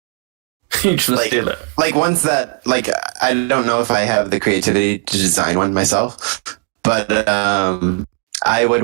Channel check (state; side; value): quieter; left; 35.7 dB